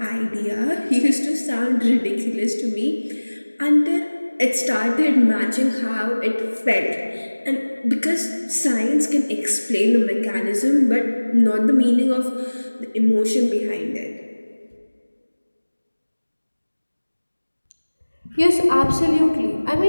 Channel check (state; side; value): inverted; both; correlation -1.00